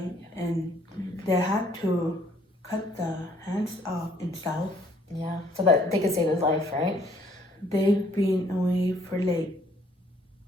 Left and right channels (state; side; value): normal; both; correlation 0.63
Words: and they had to cut the hands off in South. Yeah, so that they could save his life, right? They've been away for like